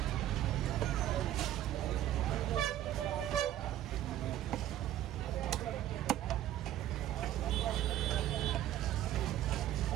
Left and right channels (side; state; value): left; quieter; 12.6 dB